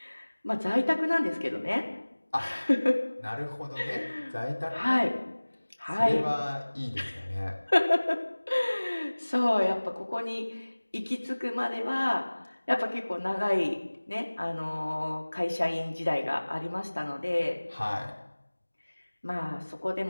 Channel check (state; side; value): inverted; both; correlation -1.00